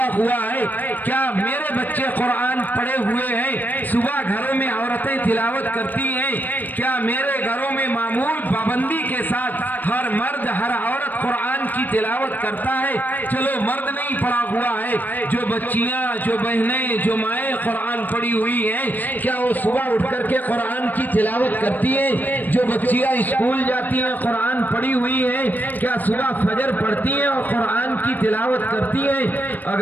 ہوا ہے؟ کیا میرے بچے قرآن پڑھے ہوئے ہیں؟ صبح گھروں میں عورتیں تلاوت کرتی ہیں؟ کیا میرے گھروں میں معمول پابندی کے ساتھ ہر مرد، ہر عورت قرآن کی تلاوت کرتا ہے؟ چلو مرد نہیں پڑھا ہوا ہے، جو بچیاں، جو بہنیں، جو مائیں قرآن پڑھی ہوئی ہیں، کیا وہ صبح اٹھ کر کے قرآن کی تلاوت کرتی ہیں؟ جو بچیاں اسکول جاتی ہیں قرآن پڑھی ہوئی ہیں، کیا صبح فجر پڑھتی ہیں اور قرآن کی تلاوت کرتی ہیں؟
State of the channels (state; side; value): late; right; 0.086 ms